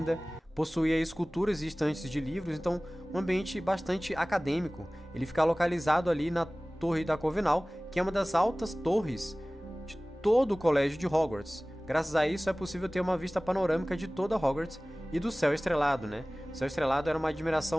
Possuía esculturas e estantes de livros, então um ambiente bastante acadêmico. Ele fica localizado ali na Torre da Corvinal, que é uma das altas torres de todo o colégio de Hogwarts. Graças a isso é possível ter uma vista panorâmica de toda Hogwarts e do céu estrelado, O céu estrelado era uma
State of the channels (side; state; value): both; normal; correlation 0.98